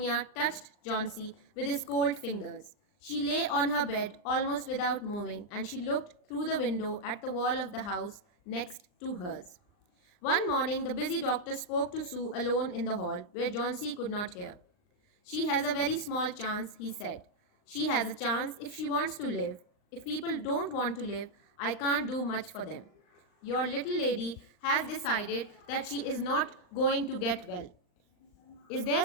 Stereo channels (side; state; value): right; late; 39 ms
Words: touched Johnsy with his cold fingers. She lay on her bed almost without moving, and she looked through the window at the wall of the house next to hers. One morning, the busy doctor spoke to Sue alone in the hall, where Johnsy could not hear. She has a very small chance, he said. She has a chance if she wants to live. If people don't want to live, I can't do much for them. Your little lady has decided that she is not going to get well. Is there